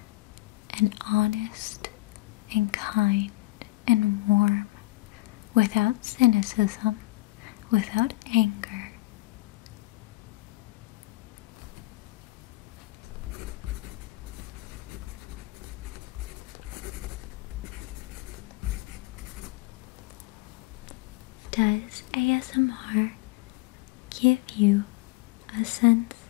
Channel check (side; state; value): right; quieter; 20.4 dB